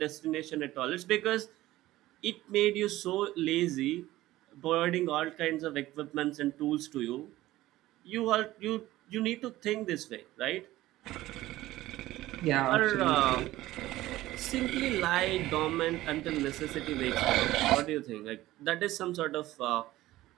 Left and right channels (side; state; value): left; quieter; 16.3 dB